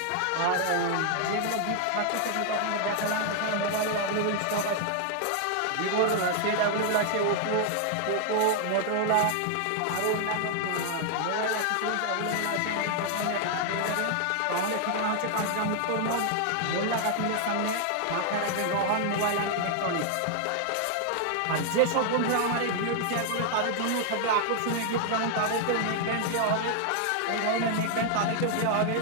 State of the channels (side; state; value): both; different; correlation 0.00